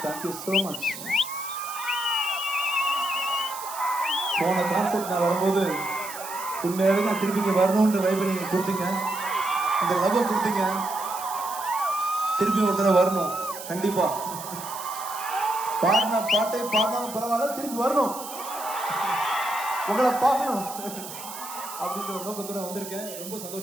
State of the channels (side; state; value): right; noise; hiss, 11 dB below the sound